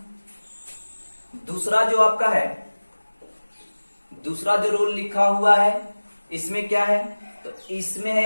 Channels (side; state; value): both; inverted; correlation -1.00